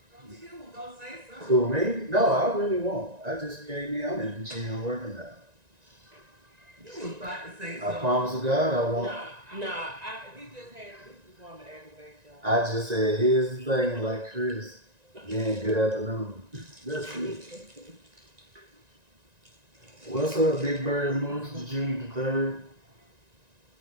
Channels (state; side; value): late; left; 1.9 ms